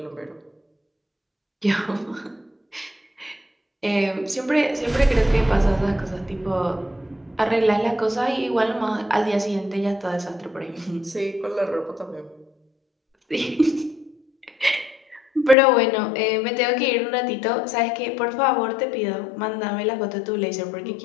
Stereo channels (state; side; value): drops out; right; at 15.6 s